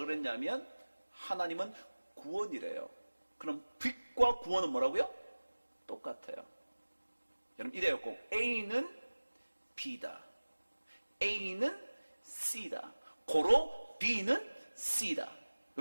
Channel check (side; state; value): both; inverted; correlation -1.00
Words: 하나님은 구원이래요. 그럼 빛과 구원은 뭐라고요? 똑같아요. 여러분 이래요. 꼭 A는 B다. A는 C다. 고로 B는 C다.